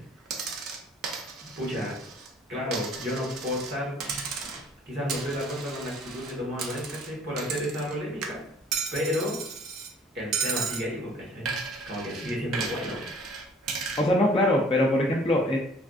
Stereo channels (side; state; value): both; normal; correlation 0.54